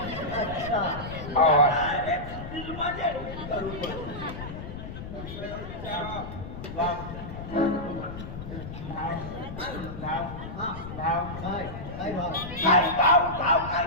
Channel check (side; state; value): left; noise; rumble, 9 dB below the sound